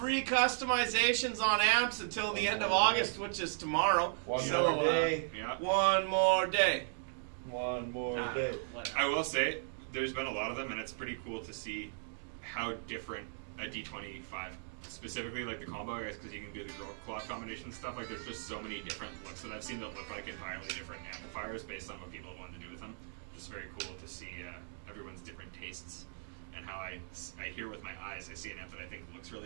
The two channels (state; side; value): silent; left; digital silence